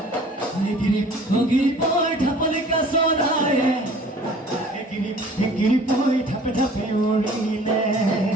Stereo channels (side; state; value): both; normal; correlation 0.49